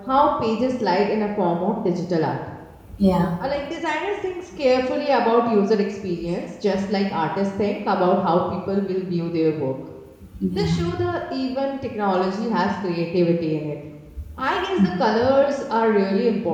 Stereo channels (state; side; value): identical; both; correlation 1.00